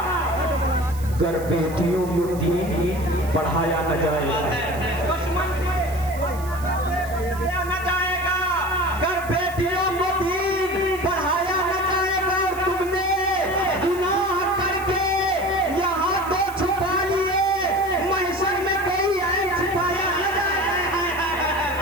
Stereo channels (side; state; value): right; noise; hiss, 18 dB below the sound